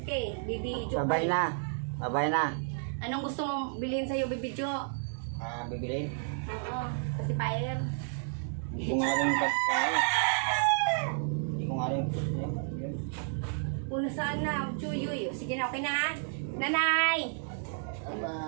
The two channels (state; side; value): silent; left; digital silence